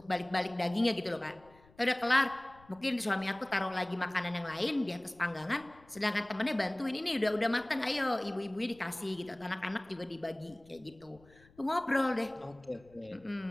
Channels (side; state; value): left; noise; rumble, 27 dB below the sound